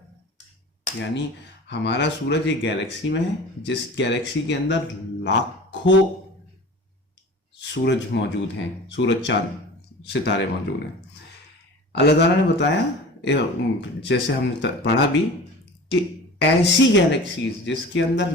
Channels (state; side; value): normal; both; correlation 0.38